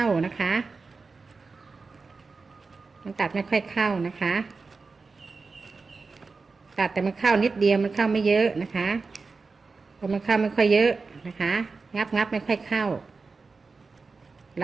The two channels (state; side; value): quieter; left; 4.3 dB